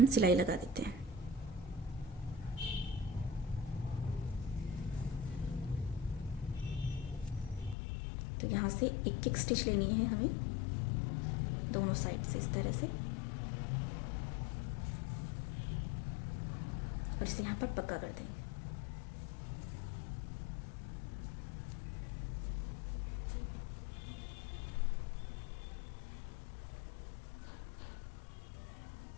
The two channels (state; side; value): drops out; right; at 7.8 s